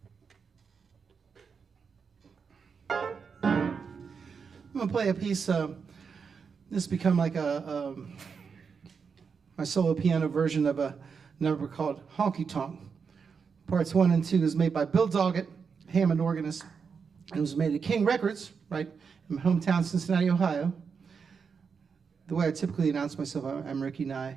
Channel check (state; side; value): quieter; left; 5.9 dB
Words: I'm going to play a piece. This has become like my solo piano version of a number called Honky Tonk. Parts 1 and 2 is made by Bill Doggett, Hammond organist, and it was made at King Records, right, in my hometown, Cincinnati, Ohio. The way I typically announce myself, I'm Ricky